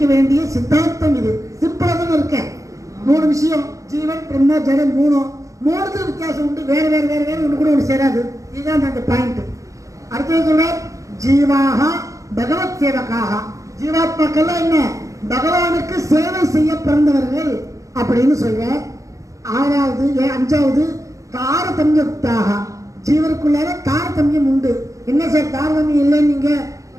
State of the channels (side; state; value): left; late; 0.16 ms